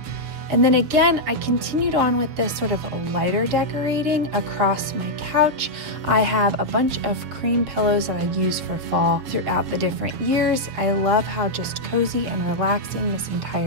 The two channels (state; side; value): late; left; 6.9 ms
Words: And then again, I continued on with this sort of lighter decorating across my couch. I have a bunch of cream pillows that I use for fall throughout the different years. I love how just cozy and relaxing this